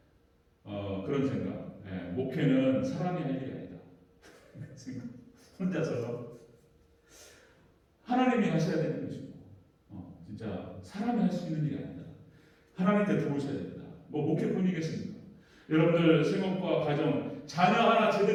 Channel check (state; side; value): identical; both; correlation 1.00